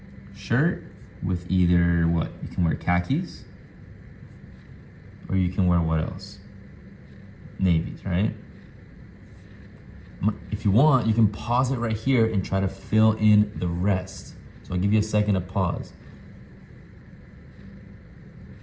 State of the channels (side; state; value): both; identical; correlation 1.00